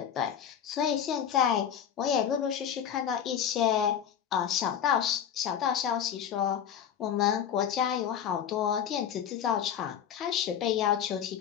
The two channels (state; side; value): quieter; right; 8.8 dB